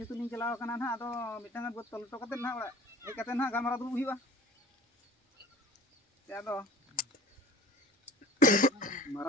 ᱤᱧ ᱪᱟᱞᱟᱣ ᱟᱠᱟᱱᱟ ᱱᱟᱦᱟᱜ ᱟᱫᱚ ᱢᱤᱫᱴᱟᱝ ᱵᱟᱹᱫ ᱛᱚᱞ ᱦᱚᱴᱚ ᱠᱟᱛᱮᱫ ᱱᱟᱦᱟᱜ ᱚᱲᱟᱜ ᱦᱮᱡ ᱠᱟᱛᱮᱫ ᱱᱟᱦᱟᱜ ᱜᱟᱞᱢᱟᱨᱟᱣ ᱫᱩᱲᱩᱵ ᱦᱩᱭᱩᱜᱼᱟ ᱟᱫᱚ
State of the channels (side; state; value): both; normal; correlation 0.46